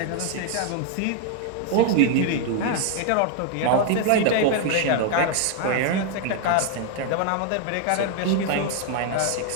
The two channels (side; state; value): both; different; correlation 0.00